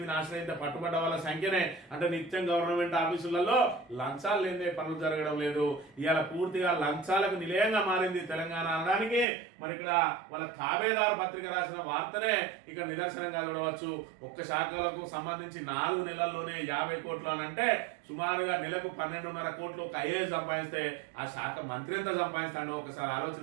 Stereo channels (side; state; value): left; drops out; at 9.2 s